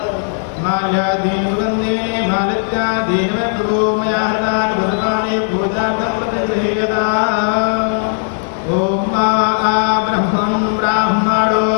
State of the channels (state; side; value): silent; right; digital silence